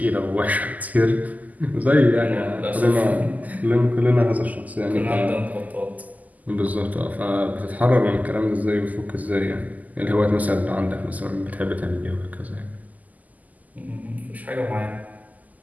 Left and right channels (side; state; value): left; late; 0.079 ms